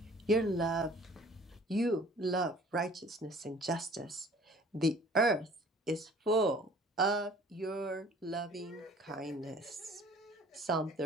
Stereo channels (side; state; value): both; normal; correlation 0.50